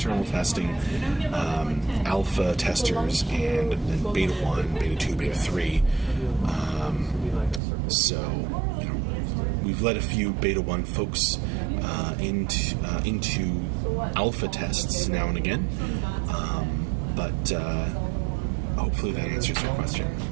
testing, alpha testers, and then beta 1, beta 2, beta 3. So we've let a few beta 1 folks into alpha tests now and again. But hopefully that answers your question.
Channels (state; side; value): drops out; left; at 7.6 s